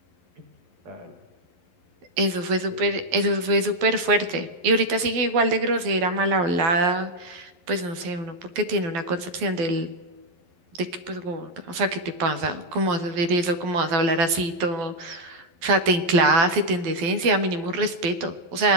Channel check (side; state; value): left; late; 11 ms